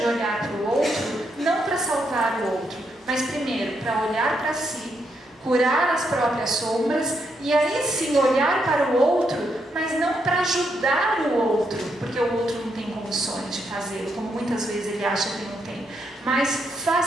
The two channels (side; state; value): both; normal; correlation 0.78